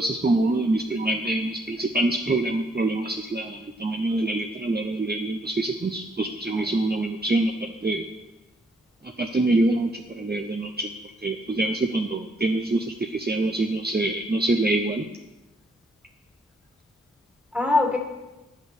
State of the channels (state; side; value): normal; both; correlation 0.71